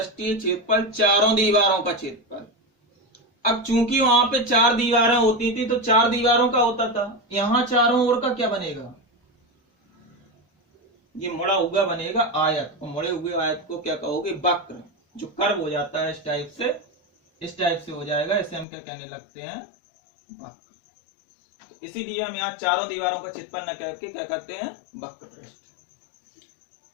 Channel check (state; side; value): drops out; right; at 18.7 s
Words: क्षेत्रफल, चारों दीवारों का क्षेत्रफल। अब चूंकि वहां पे 4 दीवारें होती थी तो 4 दीवारों का होता था, यहां चारों ओर का क्या बनेगा, ये मुड़ा हुआ बनेगा आयत, और मुड़े हुए आयत को क्या कहोगे, वक्र। जो कर्व हो जाता है इस टाइप से हो जाएगा, इसे हम क्या कहने लगते हैं, वक्र। तो इसीलिए हम यहाँ चारों दीवारों का क्षेत्रफल न करके क्या कहते हैं, वक्र पृष्ठ।